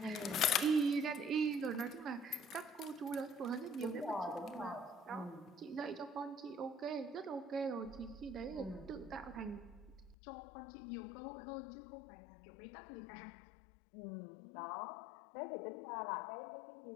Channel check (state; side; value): drops out; right; at 10.2 s